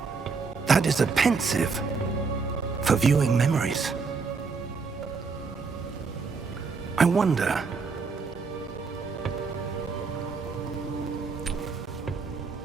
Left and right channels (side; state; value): left; quieter; 4.8 dB